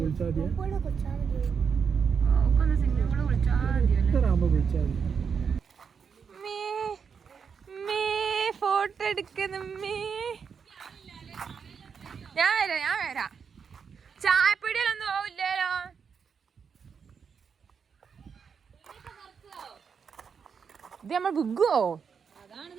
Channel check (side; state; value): left; quieter; 6.4 dB